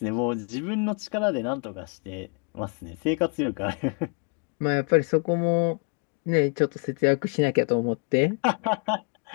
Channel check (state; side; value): quieter; right; 37.3 dB